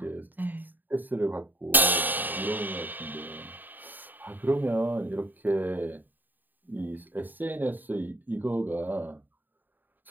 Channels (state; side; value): late; left; 0.089 ms